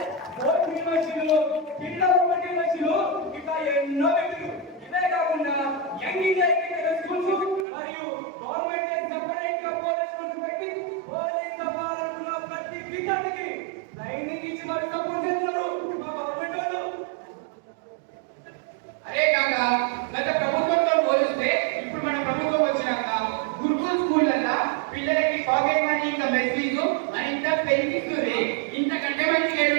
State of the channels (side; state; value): left; drops out; at 7.7 s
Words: బోర్డు యూనివర్సిటీలు పిల్లల యూనివర్సిటీలు ఇట్లా ఎన్నో పెట్టారు. ఇదే కాకుండా యంగ్ ఇండియన్ స్కూల్స్ మరియు గవర్నమెంట్ సెపరేట్ గా పోలీస్ స్కూల్స్ పెట్టి పోలీస్ అవ్వాలనుకున్న ప్రతి విద్యార్థికి ట్రైనింగ్ ఇచ్చి మరి సపోర్ట్ చేస్తున్నారు మా గవర్నమెంట్ వాళ్ళు. అరే కాక గత ప్రభుత్వంతో పోలిస్తే ఇప్పుడు మన ప్రభుత్వం వచ్చినాక గురుకుల్ స్కూళ్ళల్లో పిల్లలకి పాకెట్ మనీ ఇంకా మెస్ ఫీజు అని ఇంత పెంచిస్తుంది. ఇంతకంటే మంచిగా